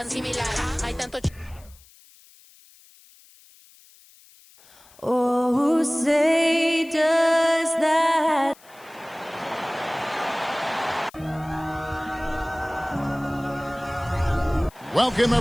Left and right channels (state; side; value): noise; left; hiss, 26 dB below the sound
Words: similar, hay tanto Oh, say does that. Welcome,